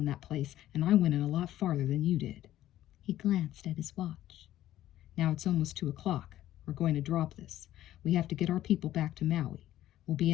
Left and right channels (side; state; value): right; quieter; 13.4 dB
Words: that place, and I went in a lot farther than you did. He glanced at his watch. Now it's almost 2 o'clock. We're going to drop this. We have to get our people back to Maui. We'll be